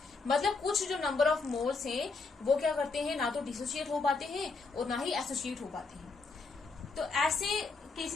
मतलब कुछ जो नंबर ऑफ मोल्स हैं वो क्या करते हैं, ना तो डिसोसिएट हो पाते हैं और ना ही एसोसिएट हो पाते हैं। तो ऐसे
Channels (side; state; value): right; quieter; 4.2 dB